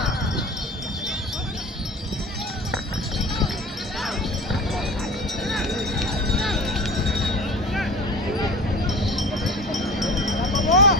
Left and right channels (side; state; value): both; normal; correlation 0.37